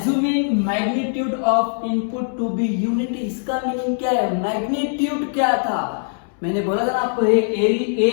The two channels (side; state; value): right; silent; 65 dB below the other